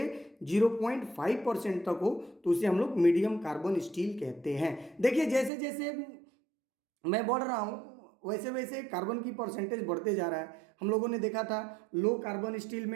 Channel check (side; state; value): left; drops out; at 5.5 s